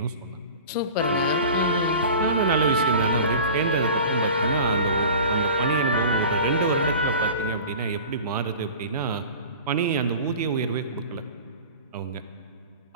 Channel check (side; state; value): both; inverted; correlation -0.39